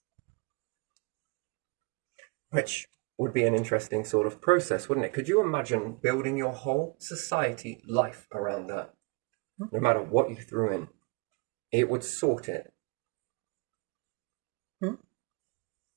Which would be an interesting sort of process, wouldn't it? Could you imagine building your whole society life around that? No matter what you threw in, it would sort it.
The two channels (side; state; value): left; quieter; 30.5 dB